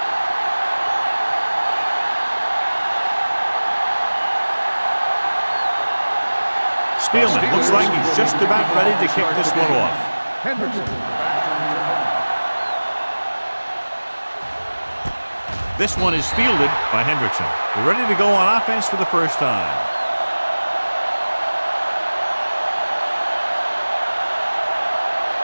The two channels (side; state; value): both; inverted; correlation -1.00